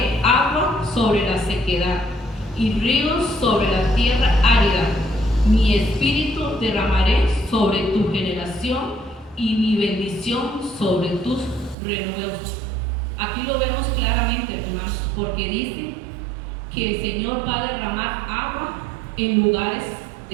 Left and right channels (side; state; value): left; drops out; at 11.8 s